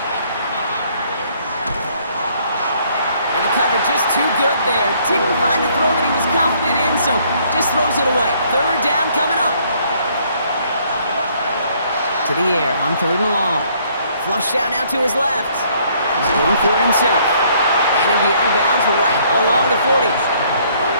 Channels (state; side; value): inverted; both; correlation -0.64